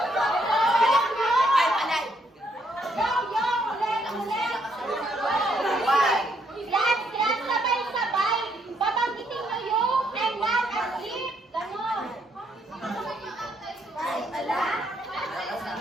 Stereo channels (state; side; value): normal; both; correlation 0.72